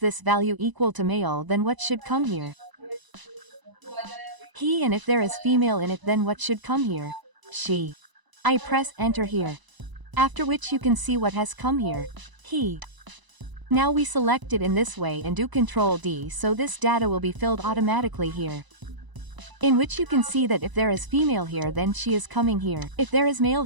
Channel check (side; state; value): left; late; 1.0 ms